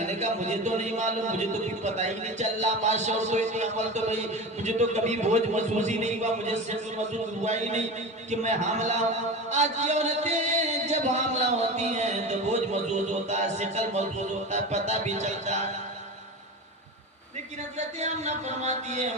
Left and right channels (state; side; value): normal; both; correlation 0.28